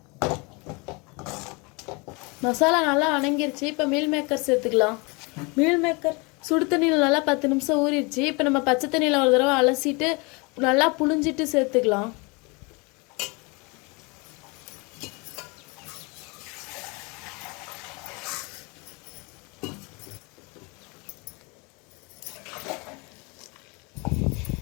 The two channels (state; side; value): quieter; right; 29.1 dB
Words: மசாலா நல்லா வணங்கிருச்சு. இப்போ மீல் மேக்கர் சேர்த்துக்கலாம். மீல் மேக்கர் சுடு தண்ணியில் நல்லா 10 நிமிஷம் ஊறிடுச்சு. இப்போ நம்ம பச்சை தண்ணியில் ஒரு தடவை அலசிட்டு நல்லா புழிஞ்சிட்டு சேர்த்துக்கலாம்.